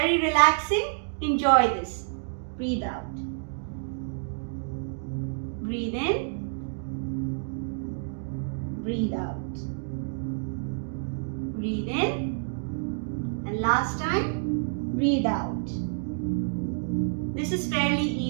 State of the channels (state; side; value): silent; left; digital silence